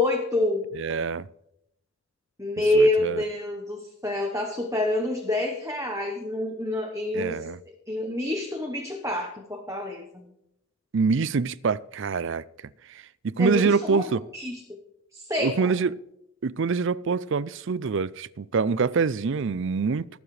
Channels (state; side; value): normal; both; correlation 0.36